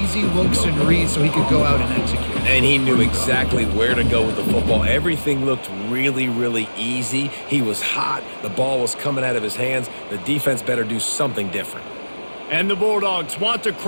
looks and reads so he could go out and execute. And he knew exactly where to go with the football. Everything looked really, really easy. He was hot. The ball was coming out of his hands. The defense better do something different. And the Bulldogs want to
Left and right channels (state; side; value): inverted; both; correlation -1.00